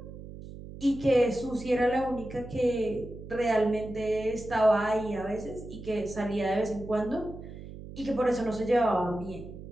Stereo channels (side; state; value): right; noise; hum, 13 dB below the sound